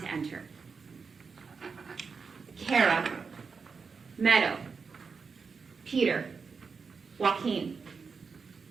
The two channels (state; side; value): quieter; left; 5.2 dB